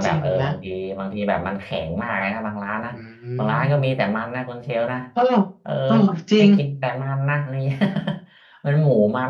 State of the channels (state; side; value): identical; both; correlation 1.00